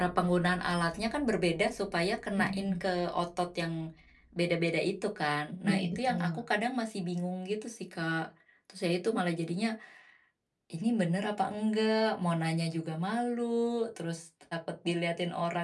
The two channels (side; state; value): both; identical; correlation 1.00